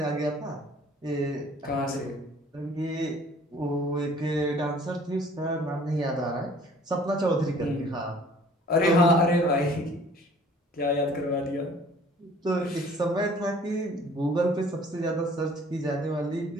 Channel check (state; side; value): normal; both; correlation 0.53